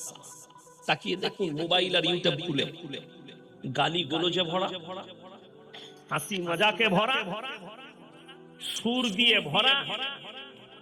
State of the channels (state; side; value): identical; both; correlation 1.00